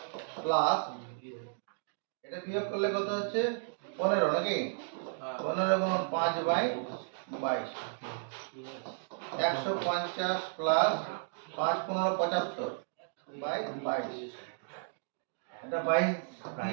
প্লাস এটা বিয়োগ করলে কত হচ্ছে? 15 নাকি? 15 গুণ 5/22। 150 প্লাস 5 15 75/22। এটা 22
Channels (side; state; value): left; silent; digital silence